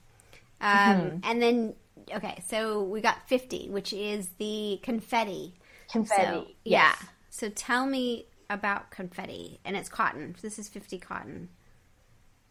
And then, okay, so we got 50, which is the confetti. Confetti, so, yeah. So tell me about confetti, and it's cotton. This is 50 cotton.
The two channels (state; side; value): identical; both; correlation 1.00